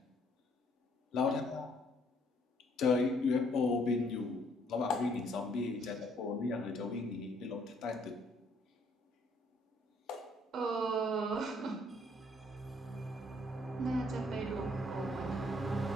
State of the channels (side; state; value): both; normal; correlation 0.65